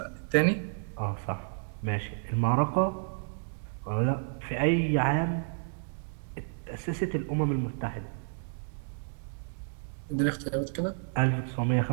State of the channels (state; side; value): silent; left; digital silence